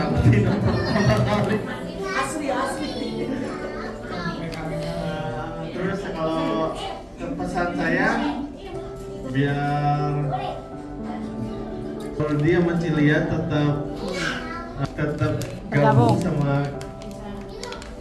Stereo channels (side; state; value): both; identical; correlation 1.00